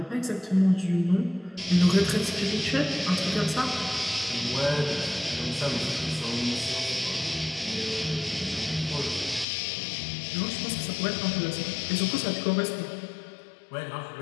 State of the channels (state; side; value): drops out; right; at 9.5 s